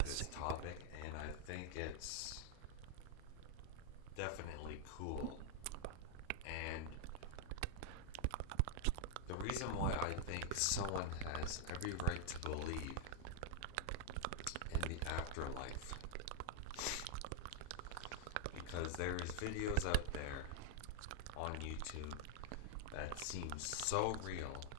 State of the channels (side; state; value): both; different; correlation 0.00